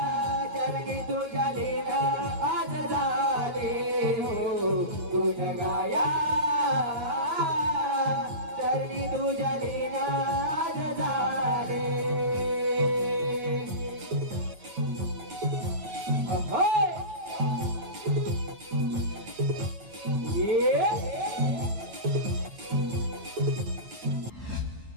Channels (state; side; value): late; left; 9.3 ms